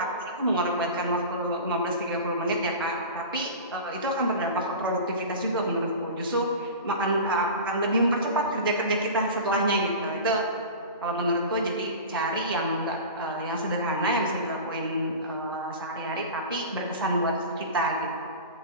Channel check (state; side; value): inverted; both; correlation -0.32